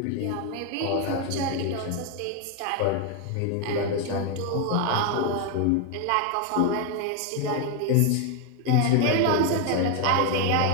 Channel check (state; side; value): different; both; correlation 0.01